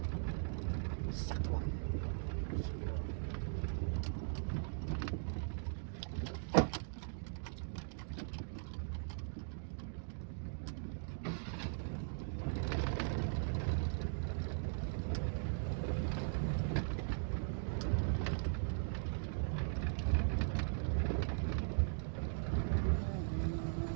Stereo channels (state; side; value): silent; left; digital silence